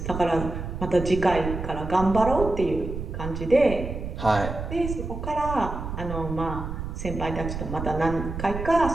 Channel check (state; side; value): noise; right; rumble, 6 dB below the sound